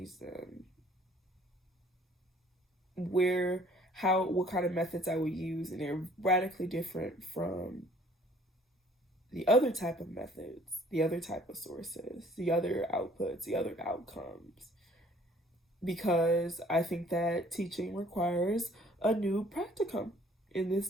them, what kind of methods I would use, and they're radically different from the other type of methods, the other type of sources, the other outputs, the other outcomes. Because I think that teaching requires a new practicum in this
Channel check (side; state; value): both; normal; correlation 0.57